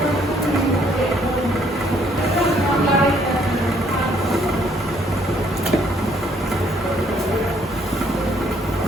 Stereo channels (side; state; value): both; normal; correlation 0.65